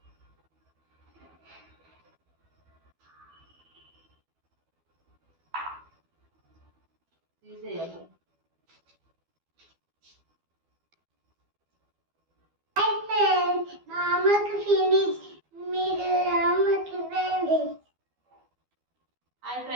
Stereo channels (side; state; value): left; late; 12 ms